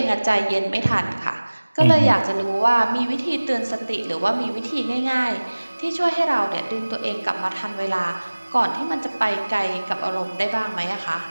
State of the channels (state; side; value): inverted; both; correlation -1.00